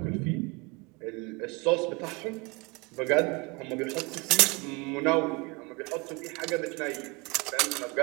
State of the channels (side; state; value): left; quieter; 27.2 dB